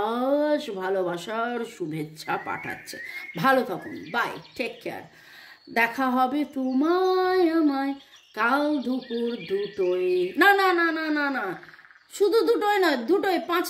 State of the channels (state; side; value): identical; both; correlation 1.00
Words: ভালোবাসার শুভেচ্ছা পাঠাচ্ছে। ভালো থাকুন, বাই, টেক কেয়ার। দেখা হবে তোমায় আমায় কাল দুপুর 2টোয়, না না না না না না, শুধু 2টোয় নয়, 2টোয়,